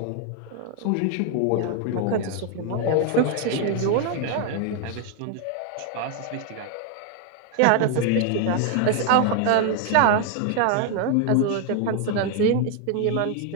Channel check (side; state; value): both; different; correlation 0.01